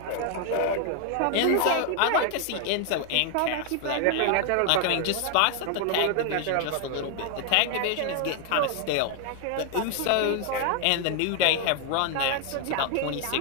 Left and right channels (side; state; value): both; different; correlation 0.00